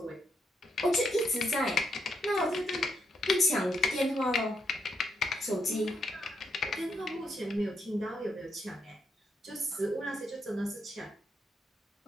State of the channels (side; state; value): both; normal; correlation 0.78